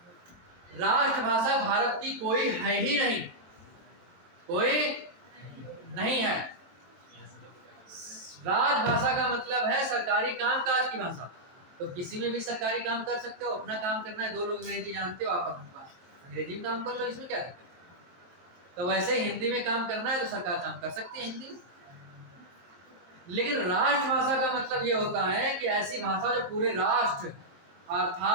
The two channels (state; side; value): late; left; 23 ms